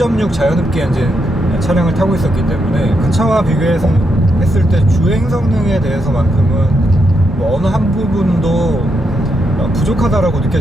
자연흡기 엔진 차량을 타고 있었기 때문에 그 차와 비교해서 했을 때 주행 성능에 대해서만큼은 뭐 어느 한 부분도 부족하다라고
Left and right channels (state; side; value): normal; both; correlation 0.81